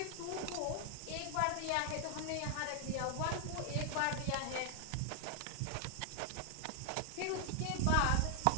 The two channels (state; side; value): different; both; correlation 0.00